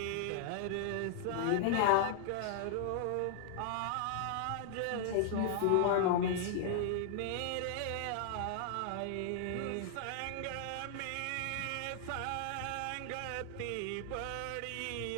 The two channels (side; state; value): both; different; correlation 0.00